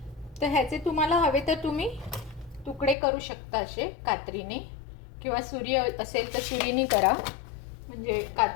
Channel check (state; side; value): drops out; right; at 3.0 s